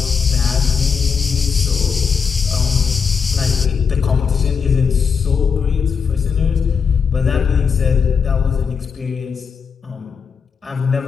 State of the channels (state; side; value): quieter; right; 6.2 dB